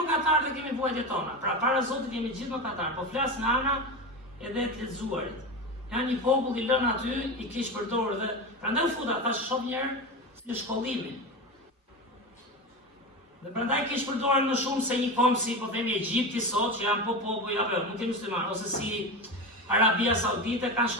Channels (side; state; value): both; normal; correlation 0.22